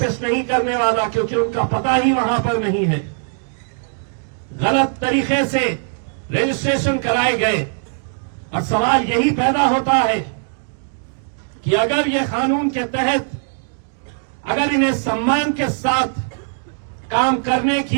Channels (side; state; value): left; silent; digital silence